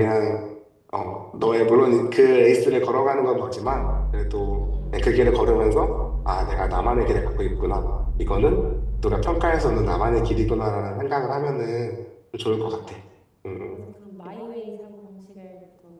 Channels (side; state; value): both; identical; correlation 1.00